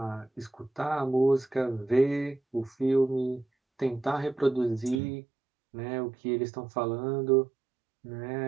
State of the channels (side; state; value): left; drops out; at 5.0 s